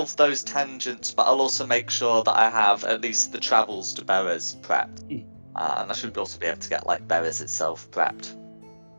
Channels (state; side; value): inverted; both; correlation -1.00